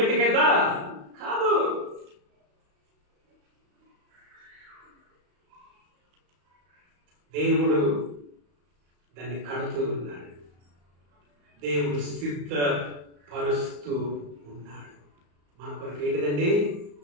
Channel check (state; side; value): late; left; 34 ms